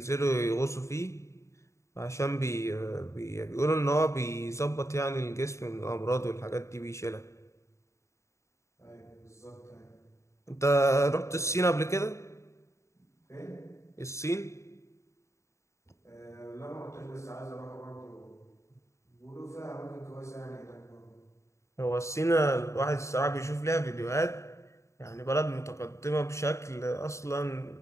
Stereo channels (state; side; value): late; right; 0.14 ms